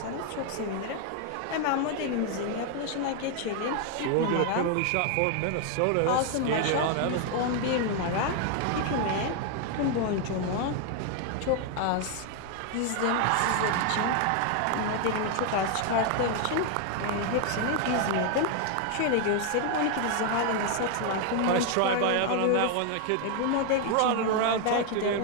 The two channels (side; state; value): both; different; correlation 0.01